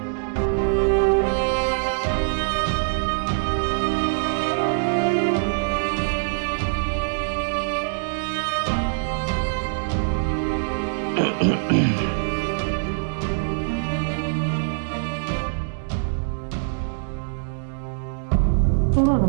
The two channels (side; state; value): left; silent; digital silence